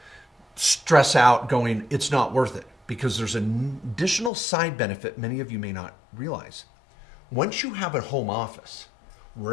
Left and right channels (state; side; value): drops out; right; at 4.3 s